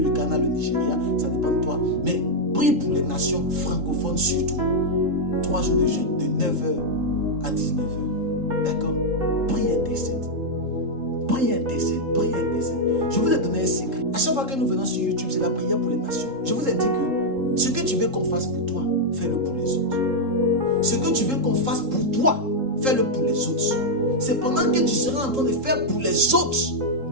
le Ghana, le Nigeria, ça dépend de toi. Mais prie pour les nations francophones surtout. 3 jours de jeûne, de 9h à 19h. D'accord? Prie intercède. Prie intercède, prie intercède. Je vous ai donné un secret. À chaque fois que nous venons sur YouTube, c'est la prière pour les nations. Je vous ai dit que ce que tu veux qu'on fasse pour toi, fais-le pour les autres. Ce que tu veux qu'on fasse pour toi, fais-le pour les autres. C'est pendant que tu seras en train de faire pour les autres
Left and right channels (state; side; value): late; left; 3.7 ms